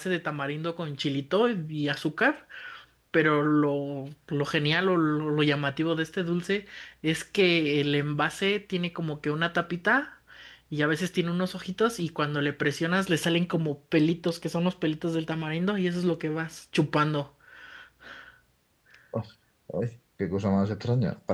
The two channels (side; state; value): both; identical; correlation 1.00